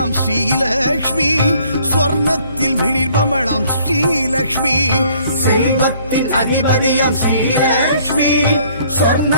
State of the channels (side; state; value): both; inverted; correlation -0.60